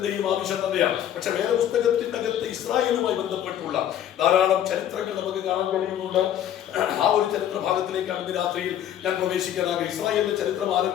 ആവശ്യം തന്നെയാണ്. പക്ഷെ വേദപുസ്തകത്തിന്റെ അകത്ത് ഇസ്രായേലുമായി ബന്ധപ്പെട്ടുള്ള ധാരാളം ചരിത്രങ്ങൾ നമുക്ക് കാണാൻ കഴിയുന്നുണ്ട്. ആ ഒരു ചരിത്ര ഭാഗത്തിലേക്കാണ് ഇന്ന് രാത്രിയിൽ ഞാൻ പ്രവേശിക്കാനാകും. ഇസ്രായേലിന്റെ ചരിത്രം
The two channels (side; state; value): right; quieter; 10.6 dB